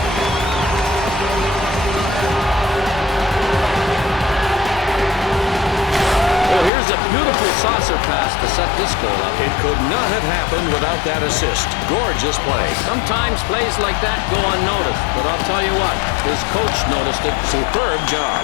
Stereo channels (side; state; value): right; drops out; at 6.7 s